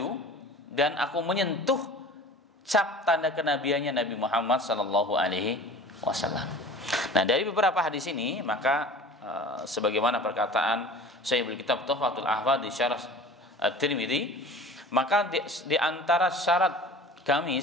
dan aku menyentuh cap tanda kenabiannya Nabi Muhammad sallallahu alaihi wasallam. Nah, dari beberapa hadis ini maka sebagaimana perkataan Syaikh Kitab Tuhfatul Ahfadh di Syarah At-Tirmidzi, maka di antara syarat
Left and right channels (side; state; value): both; normal; correlation 0.41